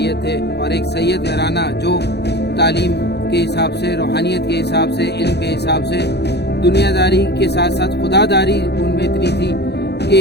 थे और एक सैयद घराना जो तालीम के हिसाब से, रूहानियत के हिसाब से, इल्म के हिसाब से, दुनियादारी के साथ साथ खुदादारी उनमें इतनी थी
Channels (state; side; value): late; right; 0.48 ms